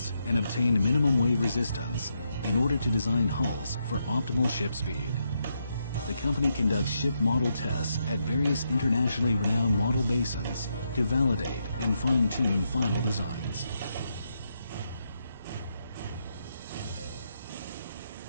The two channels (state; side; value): inverted; both; correlation -0.81